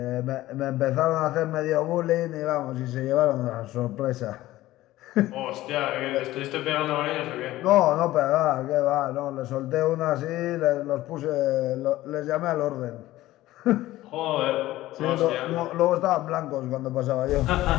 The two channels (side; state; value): right; quieter; 16.1 dB